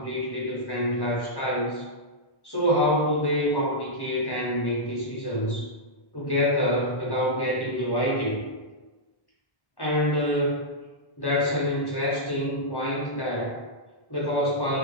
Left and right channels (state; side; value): late; right; 1.1 ms